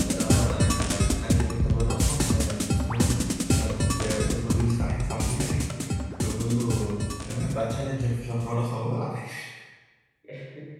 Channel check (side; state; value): both; identical; correlation 1.00